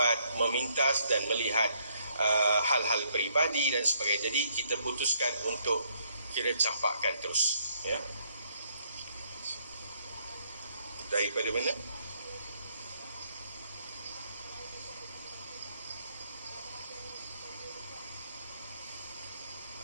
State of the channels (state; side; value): inverted; both; correlation -0.69